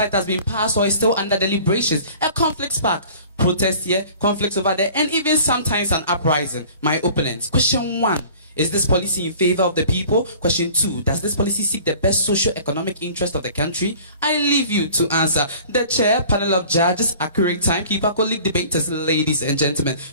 it has been passed or is still under deliberations, a conflict spark. Protest here, conflicts over there, and even sometimes an uprising. My opponents. Question 1. Is this policy in favor of the people? Question 2. Does this policy seek the best socio-economic interest of the country? I leave you to answer. The chair, panel of judges, accurate timekeeper, colleague debaters, ladies and gentlemen.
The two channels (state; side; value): inverted; both; correlation -0.47